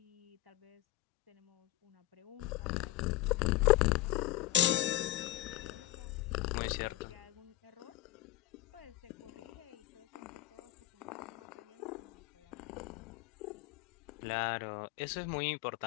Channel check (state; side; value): quieter; right; 16.7 dB